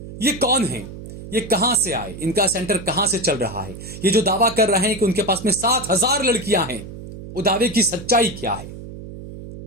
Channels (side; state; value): right; noise; hum, 12 dB below the sound